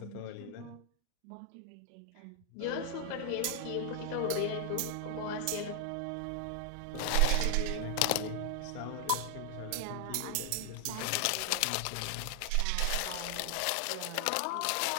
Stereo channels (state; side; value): different; both; correlation 0.00